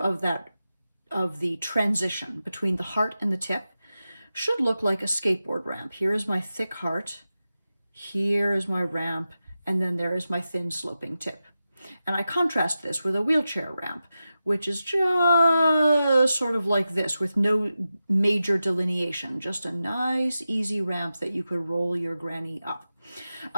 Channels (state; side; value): inverted; both; correlation -0.92